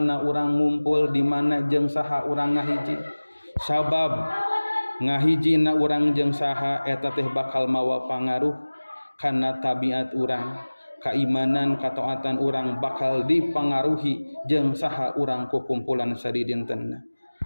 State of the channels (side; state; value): both; inverted; correlation -1.00